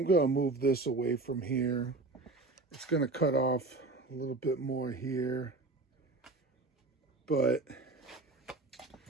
going to move this away from here. It's going to cut off a little bit more here, but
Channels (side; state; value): left; quieter; 3.3 dB